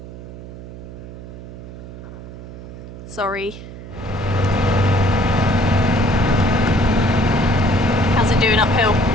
Sorry. How's it doing uphill?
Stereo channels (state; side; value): noise; right; hum, 13 dB below the sound